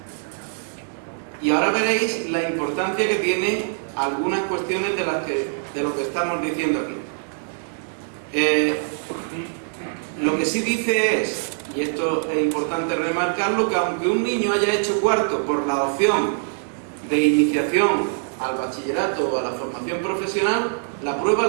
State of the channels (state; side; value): silent; left; 63 dB below the other